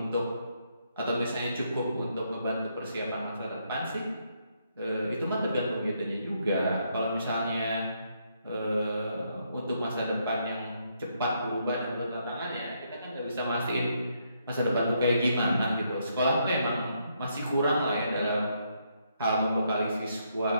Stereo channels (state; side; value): inverted; both; correlation -0.76